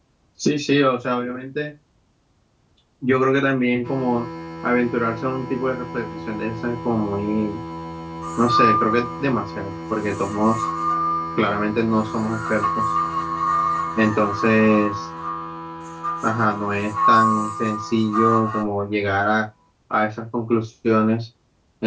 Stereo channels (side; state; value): both; identical; correlation 1.00